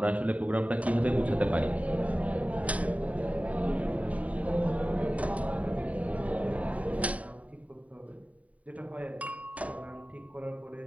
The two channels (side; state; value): left; late; 0.068 ms